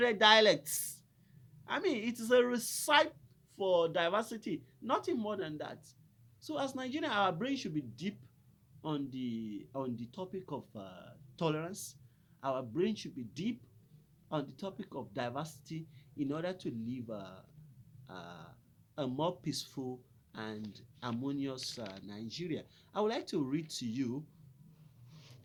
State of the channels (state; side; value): identical; both; correlation 1.00